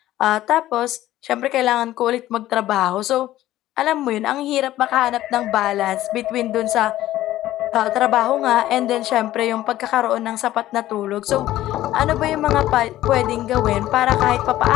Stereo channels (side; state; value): right; quieter; 14.4 dB